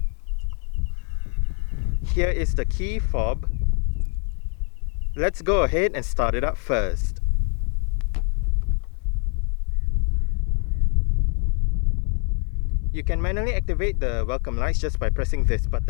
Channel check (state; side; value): quieter; right; 37.2 dB